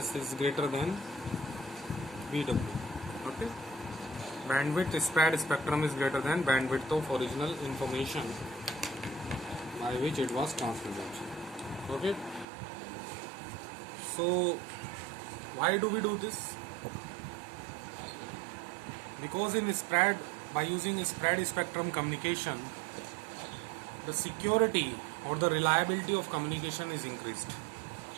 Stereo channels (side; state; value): left; drops out; at 12.5 s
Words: is greater than BW. Okay, bandwidth spread spectrum is greater than bandwidth of original information by which it was transmitted. Okay, so why do we do this? Because by using spread spectrum communication, the security or the reliability of communication is increased.